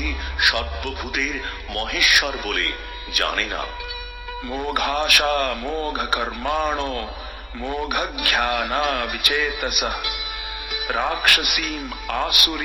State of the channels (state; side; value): identical; both; correlation 1.00